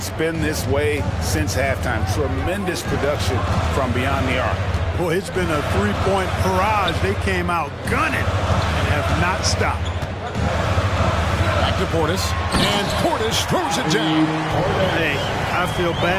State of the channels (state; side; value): identical; both; correlation 1.00